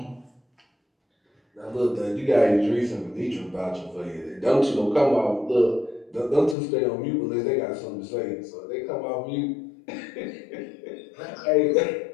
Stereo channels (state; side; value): drops out; right; at 6.6 s